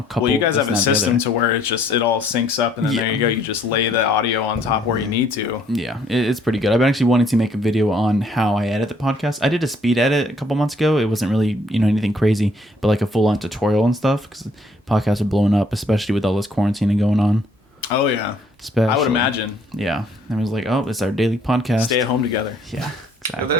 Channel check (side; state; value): both; normal; correlation 0.64